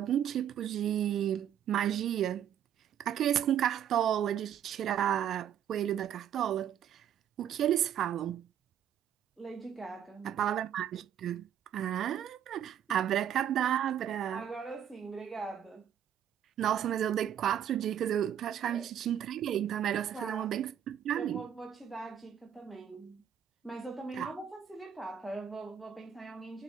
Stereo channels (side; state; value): left; quieter; 9.6 dB